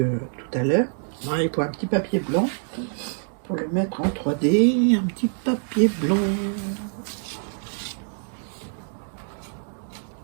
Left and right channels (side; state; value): left; silent; 59 dB below the other